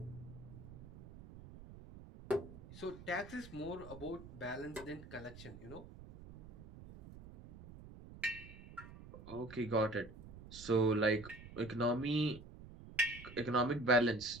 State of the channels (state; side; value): noise; right; rumble, 16 dB below the sound